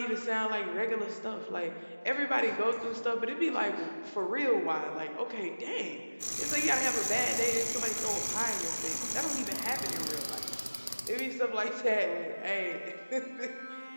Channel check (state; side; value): inverted; both; correlation -1.00